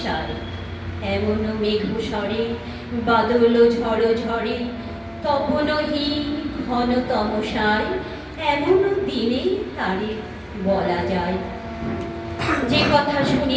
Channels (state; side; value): identical; both; correlation 1.00